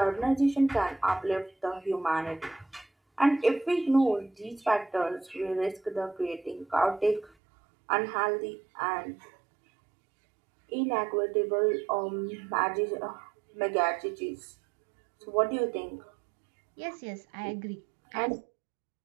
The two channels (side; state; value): left; drops out; at 7.3 s